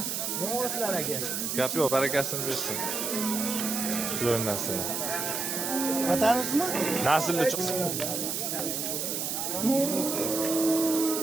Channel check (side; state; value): right; noise; hiss, 2 dB below the sound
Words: Novoslar aka. Gap yo'q, barakasini bersin. Shular narsalar. Vatanimizmi? Naslli chiqsin.